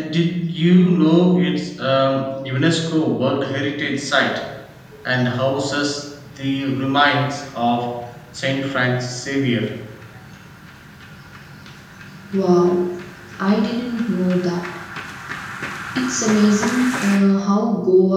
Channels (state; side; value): identical; both; correlation 1.00